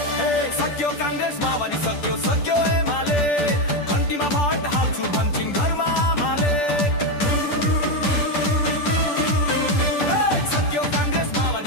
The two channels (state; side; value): late; right; 10 ms